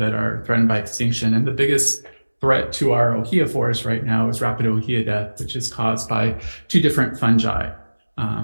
are threatened by extinction, and the biggest threat to our ohia forest right now is rapid ohia death, which is caused by 2 different fungi.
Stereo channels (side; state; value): both; inverted; correlation -1.00